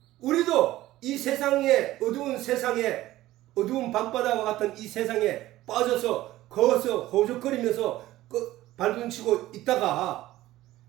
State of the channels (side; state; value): left; quieter; 15.8 dB